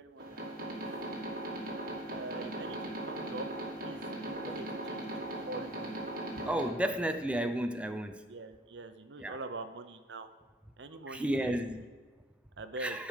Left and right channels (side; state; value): both; normal; correlation 0.55